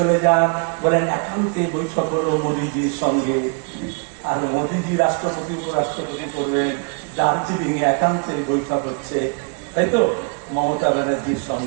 যান, বলেন একান্তে বৈঠক করবো মোদীজির সঙ্গে। আর মোদীজি রাষ্ট্রপতি উপরাষ্ট্রপতি করবেন, দার্জিলিং এ একান্তে বৈঠক হচ্ছে, তাই তো মমতা ব্যানার্জির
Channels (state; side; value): quieter; left; 37.6 dB